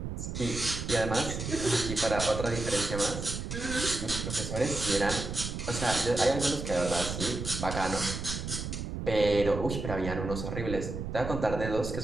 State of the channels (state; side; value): noise; right; rumble, 5 dB below the sound